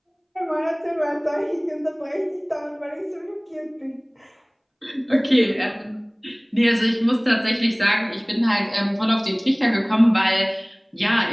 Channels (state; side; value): identical; both; correlation 1.00